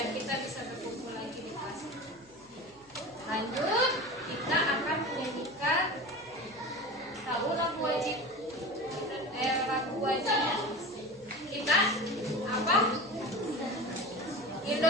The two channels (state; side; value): noise; left; hum, 29 dB below the sound